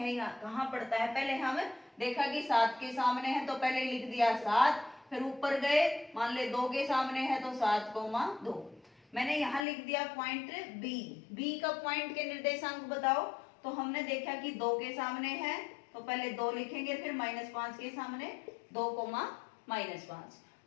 कहाँ पड़ता है। पहले हम देखा कि 7 के सामने है तो पहले लिख दिया 7, फिर ऊपर गए मान ले 2 के सामने है तो 7,2। मैंने यहाँ लिख दिया पॉइंट बी का पॉइंट के निर्देशांक बताओ, तो हमने देखा कि 2 के सामने है तो पहले 2 लिखेंगे, फिर -5 के सामने 2,-5।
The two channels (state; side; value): drops out; right; at 9.7 s